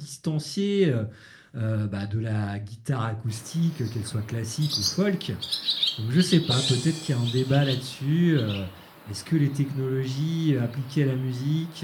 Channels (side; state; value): both; identical; correlation 1.00